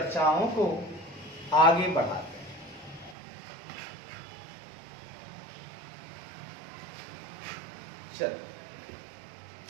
को आगे बढ़ाते हैं। चलो,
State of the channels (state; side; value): drops out; left; at 3.2 s